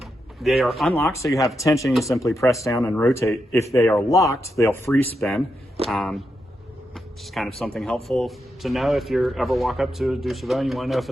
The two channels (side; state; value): both; normal; correlation 0.85